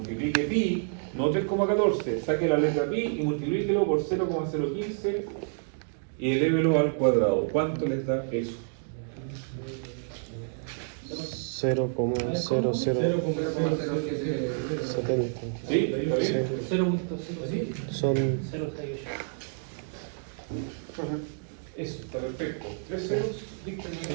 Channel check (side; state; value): left; silent; digital silence